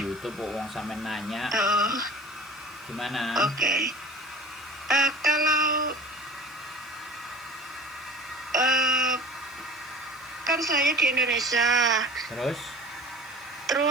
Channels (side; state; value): left; noise; hiss, 27 dB below the sound